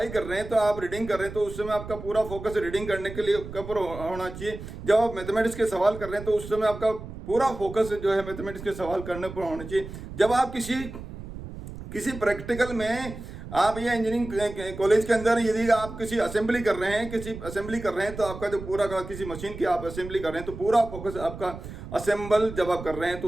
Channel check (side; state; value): right; noise; rumble, 11 dB below the sound